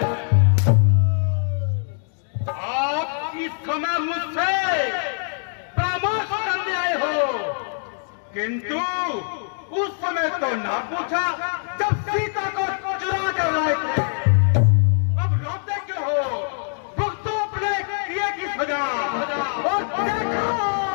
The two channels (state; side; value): silent; right; digital silence